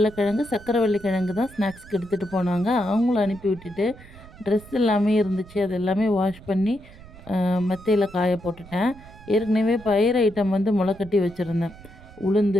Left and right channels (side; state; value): right; noise; rumble, 20 dB below the sound